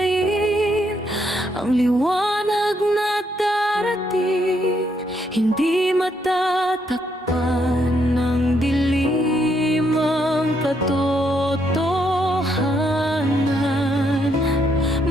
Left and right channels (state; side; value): normal; both; correlation 0.75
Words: ang liwanag na darating? Hindi matatakpan ng dilim ang katotohanan.